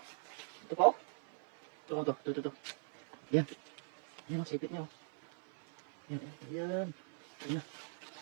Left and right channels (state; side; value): silent; left; 51 dB below the other